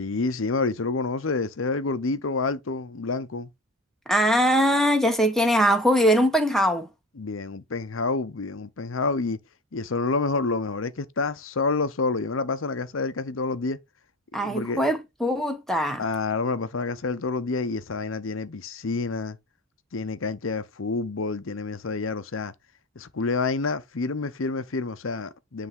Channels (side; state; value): both; normal; correlation 0.34